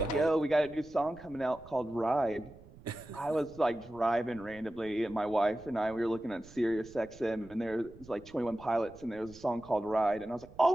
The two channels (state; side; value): noise; right; rumble, 21 dB below the sound